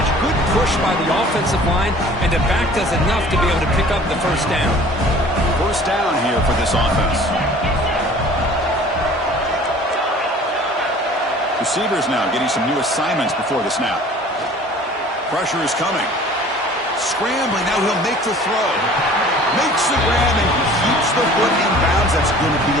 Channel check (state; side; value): normal; both; correlation 0.48